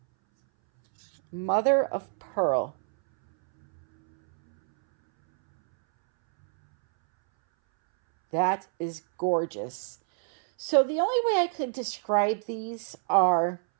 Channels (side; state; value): left; silent; 61 dB below the other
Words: Mother of Pearl. That is gorgeous. So the only way I could describe these